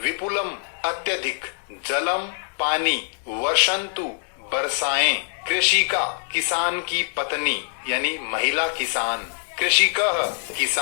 विपुलम अत्यधिक जलम पानी वर्षन्तु बरसाएं कृषिका किसान की पत्नी यानी महिला किसान कृषिकः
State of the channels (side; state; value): right; silent; digital silence